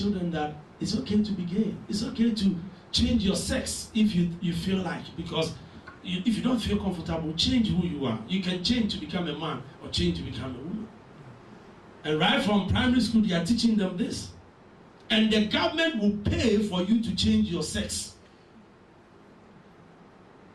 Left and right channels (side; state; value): both; identical; correlation 1.00